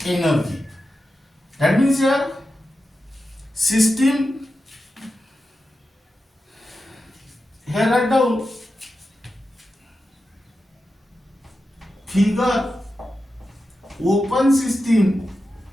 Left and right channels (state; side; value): normal; both; correlation 0.91